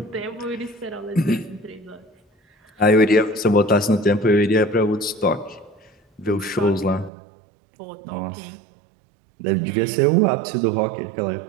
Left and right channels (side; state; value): left; drops out; at 7.1 s